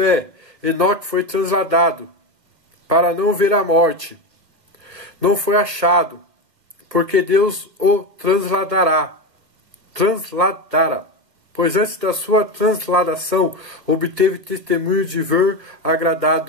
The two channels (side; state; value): left; late; 1.4 ms